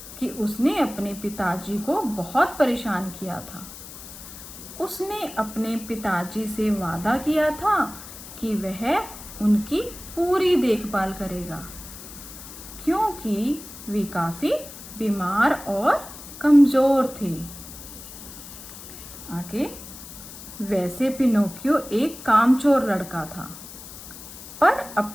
कि उसने अपने पिताजी को बहुत परेशान किया था। उसने अपने पिताजी से वादा किया था कि वह उनकी पूरी देखभाल करेगा, क्योंकि वे काफी बीमार और कमजोर थे। आगे, वैसे पिनोकियो एक कामचोर लड़का था, पर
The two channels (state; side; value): noise; left; hiss, 14 dB below the sound